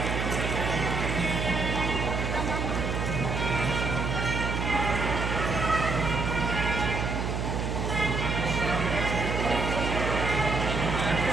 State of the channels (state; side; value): noise; right; hum, 1 dB below the sound